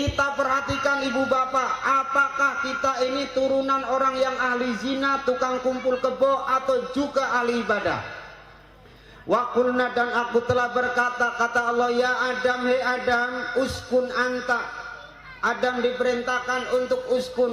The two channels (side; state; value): both; identical; correlation 1.00